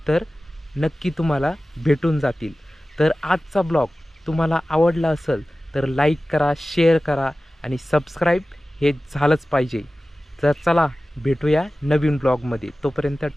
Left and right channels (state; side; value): normal; both; correlation 0.96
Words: नक्की तुम्हाला भेटून जातील. तर आजचा ब्लॉग तुम्हाला आवडला असेल तर लाईक करा, शेअर करा आणि सबस्क्राईब हे झालंच पाहिजे. तर चला भेटूया नवीन ब्लॉगमध्ये. तोपर्यंत